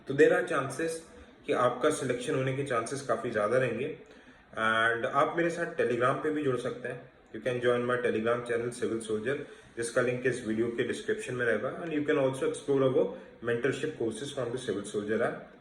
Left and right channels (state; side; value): identical; both; correlation 1.00